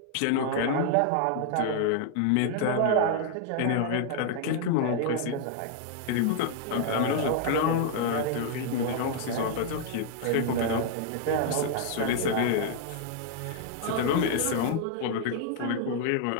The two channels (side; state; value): both; different; correlation 0.00